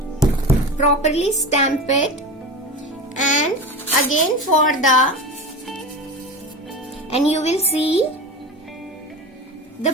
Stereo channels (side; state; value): both; normal; correlation 0.28